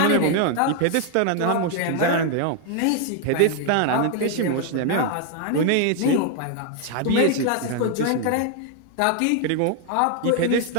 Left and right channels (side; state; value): both; different; correlation 0.00